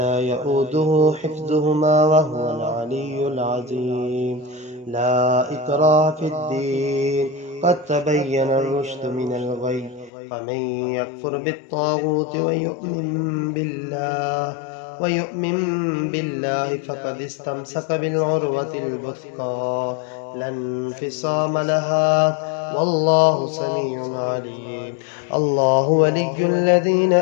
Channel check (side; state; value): right; drops out; at 10.1 s